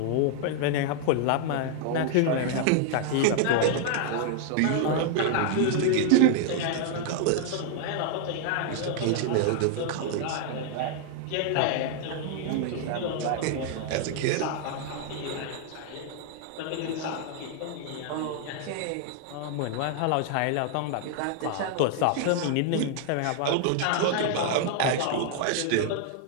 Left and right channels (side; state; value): both; different; correlation -0.01